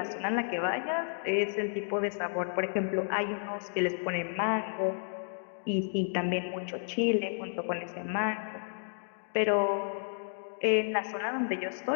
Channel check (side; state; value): right; silent; digital silence